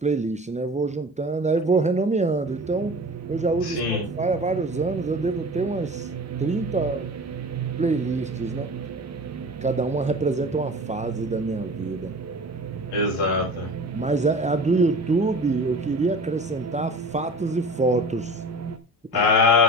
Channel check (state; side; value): normal; both; correlation 0.38